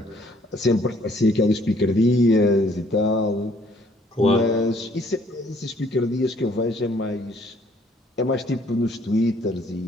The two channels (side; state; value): both; normal; correlation 0.63